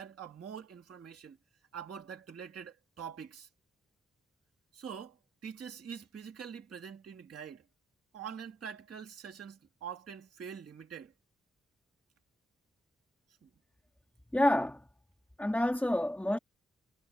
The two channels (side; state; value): both; normal; correlation 0.89